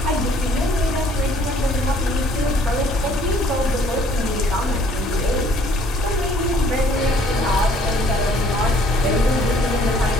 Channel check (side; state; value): both; normal; correlation 0.60